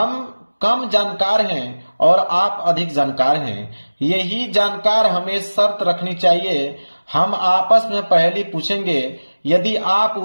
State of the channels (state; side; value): inverted; both; correlation -1.00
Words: कम जानकार हैं और आप अधिक जानकार हैं। यही जानकार हमें शर्त रखनी चाहिए, हम आपस में पहेली पूछेंगे, यदि आप